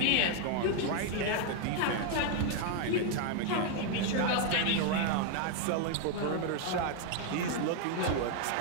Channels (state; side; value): different; both; correlation 0.00